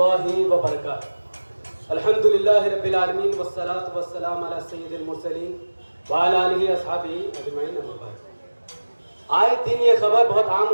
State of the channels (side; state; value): both; inverted; correlation -1.00